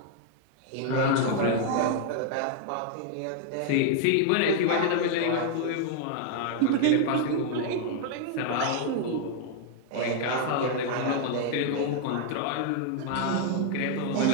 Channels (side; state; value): both; different; correlation 0.00